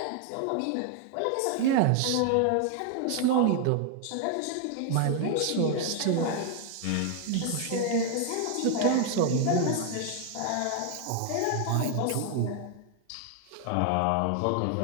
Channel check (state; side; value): different; both; correlation 0.00